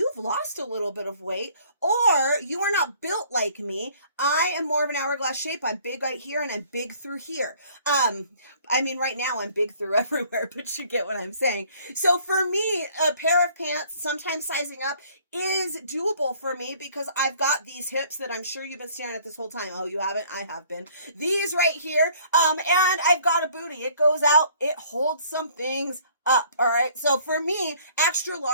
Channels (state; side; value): inverted; both; correlation -0.58